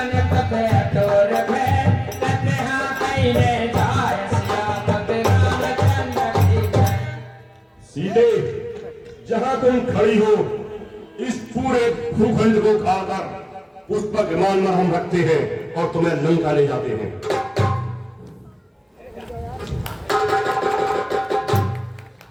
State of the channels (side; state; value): both; identical; correlation 1.00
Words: तक अटोर भय, तते हाँ कईले जाय सिया, तब रामचंद्र की जय। सीधे जहां तुम खड़ी हो, इस पूरे भूखंड को खाकर उस पर विमान में हम रखते हैं और तुम्हें लंका ले जाते हैं।